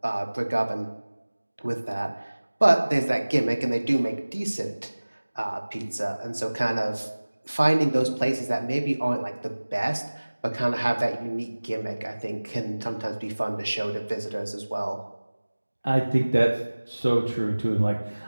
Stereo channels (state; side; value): inverted; both; correlation -1.00